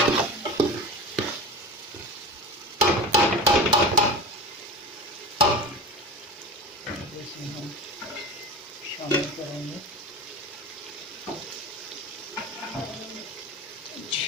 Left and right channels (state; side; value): normal; both; correlation 0.30